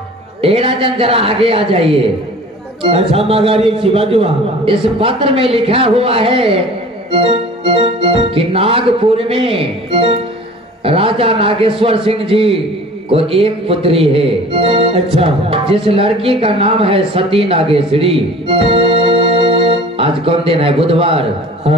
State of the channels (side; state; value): both; normal; correlation 0.44